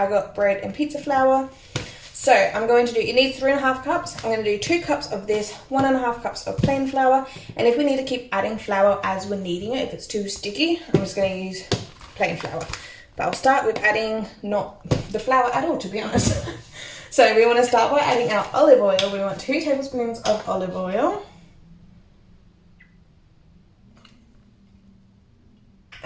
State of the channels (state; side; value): identical; both; correlation 1.00